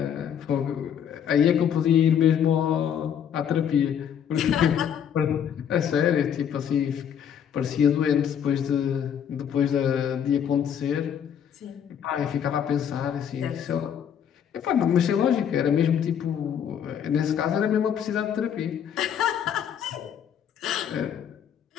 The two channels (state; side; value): quieter; right; 8.6 dB